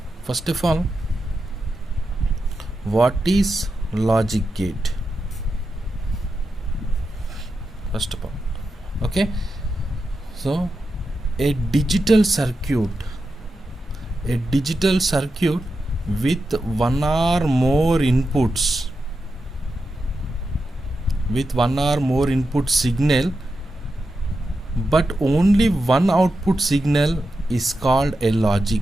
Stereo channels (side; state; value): both; normal; correlation 0.88